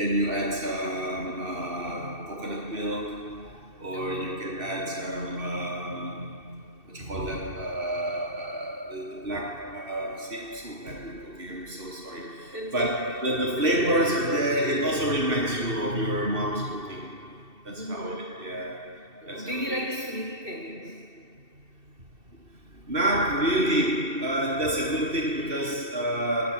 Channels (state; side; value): late; left; 2.7 ms